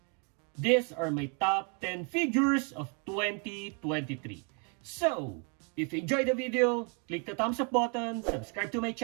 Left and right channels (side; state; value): left; quieter; 37.2 dB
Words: These are my top 10 figures of 2023. So, if you enjoyed the video, click the thumbs up button, subscribe to my